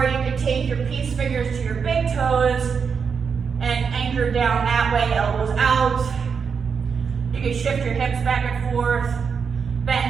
you can take your peace fingers to your big toes and anchor down that way, elbows out. You can shift your hips back and forth,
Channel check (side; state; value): left; quieter; 6.1 dB